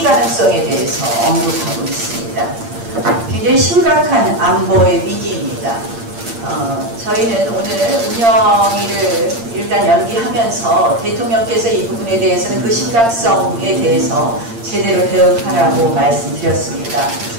가능성에 대해서 언급하고 있습니다. 굉장히 심각한 안보의 위기입니다. 저희는 오늘 운영위를 일단 연기하면서 대통령께서 이 부분에 대해서는 그 심각성에 대해서 제대로 대응하라고 말씀드렸습니다.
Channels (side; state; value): left; late; 8.7 ms